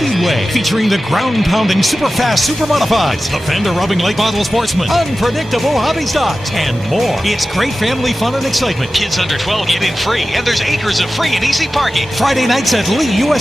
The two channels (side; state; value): both; normal; correlation 0.94